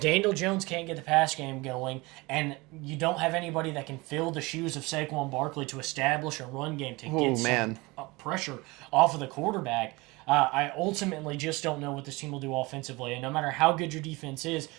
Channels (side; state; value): left; quieter; 23.6 dB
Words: Daniel Jones can't get the pass game going and you don't have anybody that can fill the shoes of Saquon Barkley to establish a run game to get some pressure off of the quarterback, I ultimately just don't know what this team will do offensively. And no matter how good your defense is,